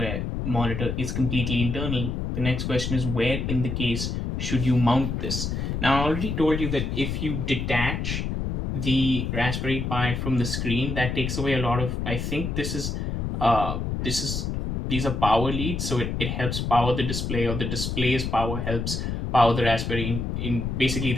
monitor is completely internal, the next question is where in the case should you mount this? Now, I already told you that if you detach the Raspberry Pi from the screen, that takes away a lot of, I think these are power leads, so it helps power the display, or the display's power helps power the Raspberry in basically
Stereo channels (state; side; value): noise; left; rumble, 2 dB below the sound